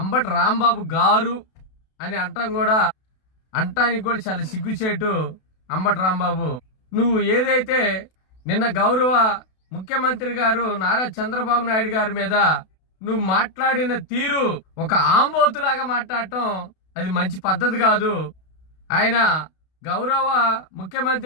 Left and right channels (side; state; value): right; late; 32 ms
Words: రాంబాబు గారు అని అంటానికి కూడా చాలా సిగ్గుచేటు. అంబటి రాంబాబు, నువ్వు ఏదైతే నిన్న గౌరవ ముఖ్యమంత్రి గారు నారా చంద్రబాబు నాయుడు గారి మీద నువ్వు మాట్లాడిన తీరు ఒక ఆంబోతులాగా మాట్లాడటం అది మంచి పద్ధతి కాదు. ఆయన గౌరవ